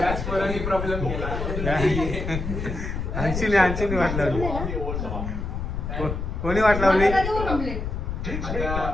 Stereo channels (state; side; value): noise; left; rumble, 4 dB below the sound